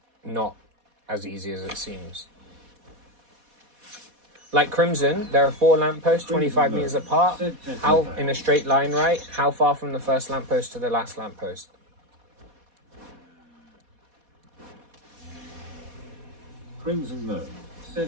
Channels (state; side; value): late; left; 4.2 ms